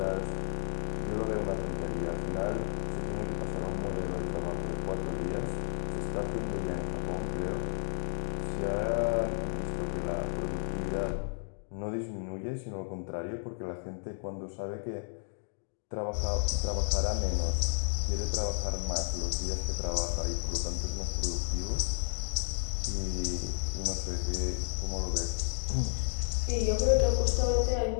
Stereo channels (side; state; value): right; silent; digital silence